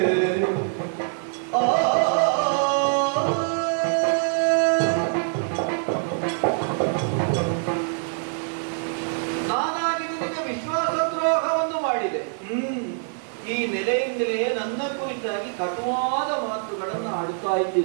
ಈ ನೆಲೆಯಿಂದಲೇ ನನ್ನ ಕುರಿತಾಗಿ ಕಟುವಾದ ಮಾತುಗಳನ್ನು ಆಡುತ್ತಾ ಇದ್ದೆ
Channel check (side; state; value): left; silent; 62 dB below the other